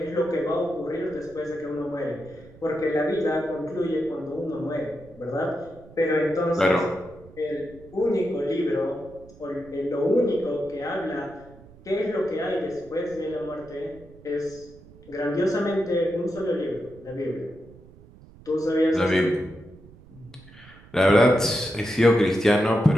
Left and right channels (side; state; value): right; noise; rumble, 22 dB below the sound